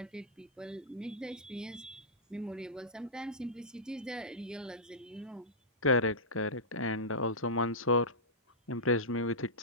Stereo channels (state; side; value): normal; both; correlation -0.14